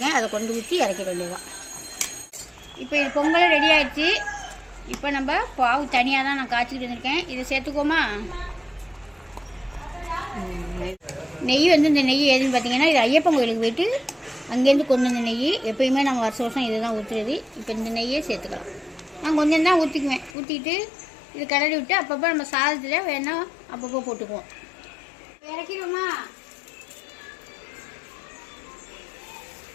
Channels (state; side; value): drops out; right; at 20.3 s